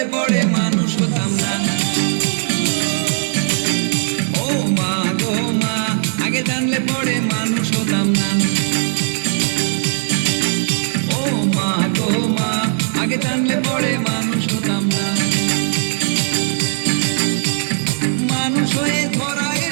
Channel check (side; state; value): left; silent; 64 dB below the other